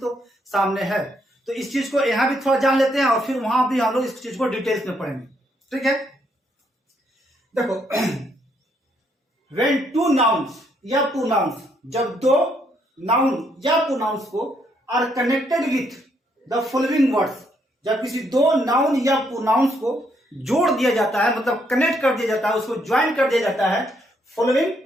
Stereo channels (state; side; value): normal; both; correlation 0.73